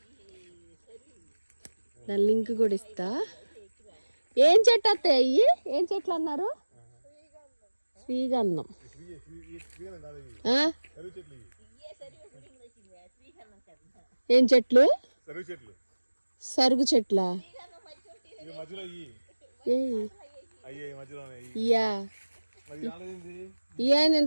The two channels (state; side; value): inverted; both; correlation -1.00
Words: దాని లింక్ కూడా ఇస్తా. ఏం చెట్టు అత్తయ్య అయ్యి? ఏం చెట్లు అన్నారు? శ్రీగంధం. ఏం చెట్లు? సరుగు చెట్లా?